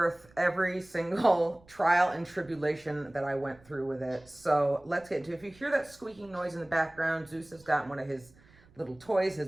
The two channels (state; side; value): noise; right; rumble, 27 dB below the sound